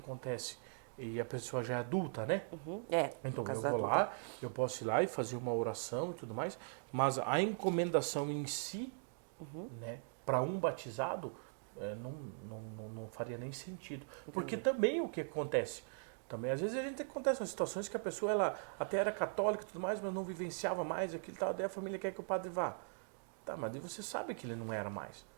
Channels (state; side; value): silent; left; digital silence